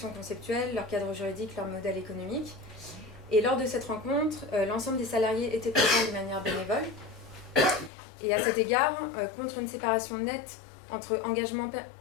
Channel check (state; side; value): drops out; right; at 7.9 s